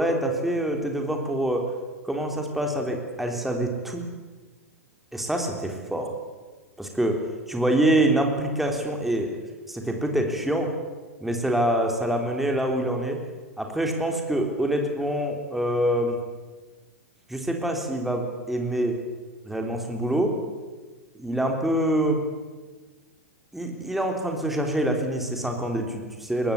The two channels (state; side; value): normal; both; correlation 0.49